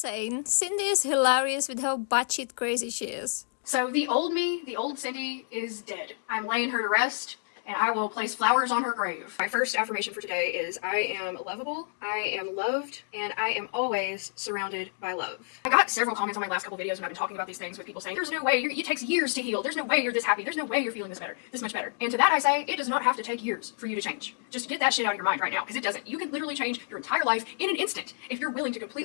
Cindy is hilarious with how batshit crazy she is. So the old me, the old Cindy, is dead. I'm laying her to rest, and I will place flowers on her grave. My first affirmation for today is I am lovable, I am loved, and I am always surrounded by love. I got several comments on my last couple videos when I've been talking about these things with people saying, there's no way, it takes years to heal, there's no way you're this happy, there's no way you're feeling this much better. And to that I say, it does not have to take years for you to change. Just get that shit out of your mind right now, because it doesn't. You can literally change your entire life in an instant if you're willing to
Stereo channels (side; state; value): right; silent; digital silence